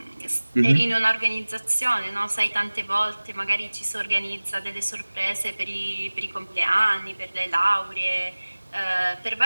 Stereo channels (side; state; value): both; inverted; correlation -1.00